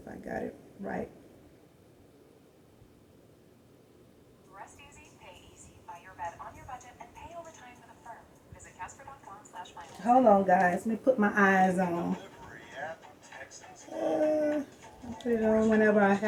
I got it right. Rest easy, pay easy. Buy your bed on your budget and pay overtime with a firm. Visit Casper.com/finance. Hold on, guys. Let me put my eyes on. I'll put it on whenever I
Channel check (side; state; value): both; identical; correlation 1.00